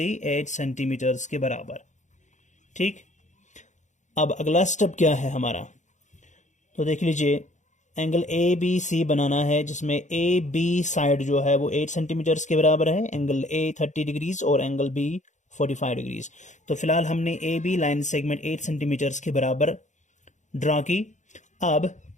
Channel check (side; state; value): right; late; 0.35 ms